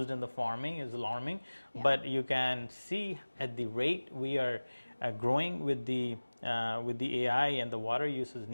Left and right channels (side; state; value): both; inverted; correlation -1.00